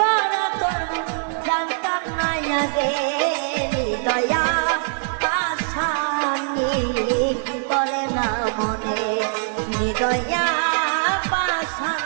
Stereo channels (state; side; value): silent; left; digital silence